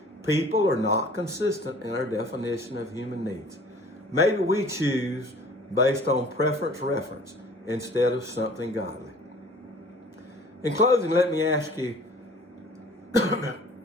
People are not consistent in our definition of human needs. Maybe we choose based on preference instead of something godly. In closing, let me ask you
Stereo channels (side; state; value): both; normal; correlation 0.49